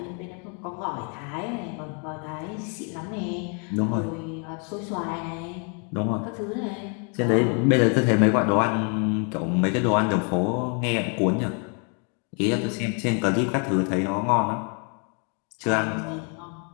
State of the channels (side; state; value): right; quieter; 39.2 dB